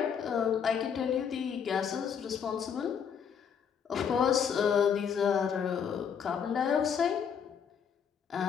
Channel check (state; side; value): quieter; right; 7.4 dB